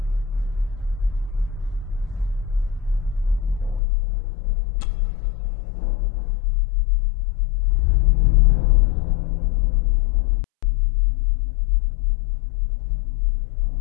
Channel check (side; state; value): right; drops out; at 3.8 s